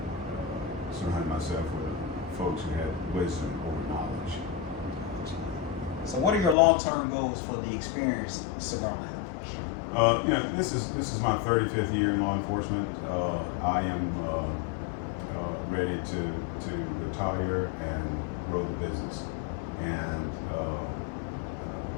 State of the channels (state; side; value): drops out; right; at 6.6 s